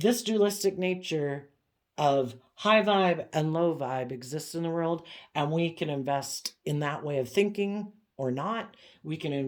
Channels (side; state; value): both; identical; correlation 1.00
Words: dualistic nature of high vibe and low vibe exists in the world, and we can invest in that way of thinking or not. We can